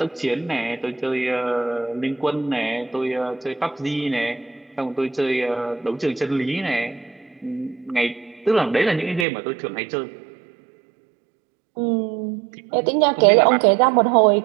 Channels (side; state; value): left; drops out; at 9.2 s